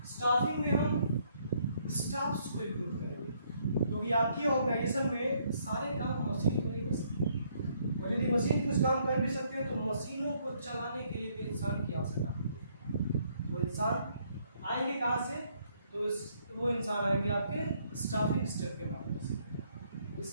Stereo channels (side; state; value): both; inverted; correlation -0.69